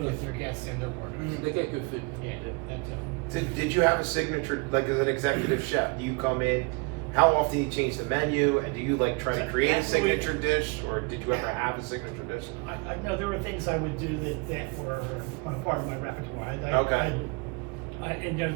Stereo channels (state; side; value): quieter; left; 29.0 dB